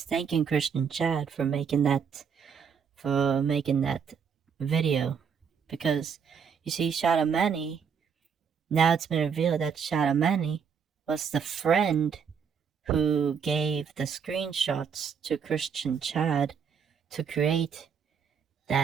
thanking Christian Chad for making that video, because you see, Shadow Manny, now it's been revealed that Shadow Manny was the friend who gave the screenshots to Christian Chad to create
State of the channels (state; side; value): quieter; left; 6.8 dB